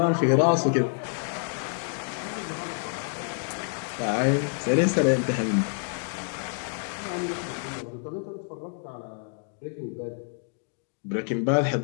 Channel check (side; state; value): right; silent; 57 dB below the other